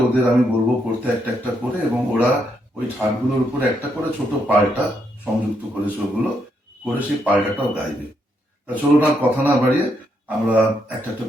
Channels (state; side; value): normal; both; correlation 0.78